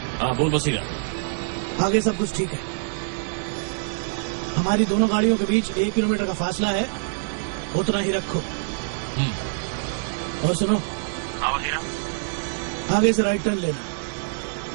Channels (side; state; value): left; silent; digital silence